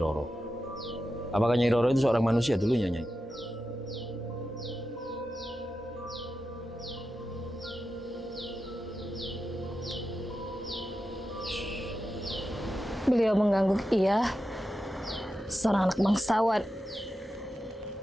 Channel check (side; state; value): both; normal; correlation 0.90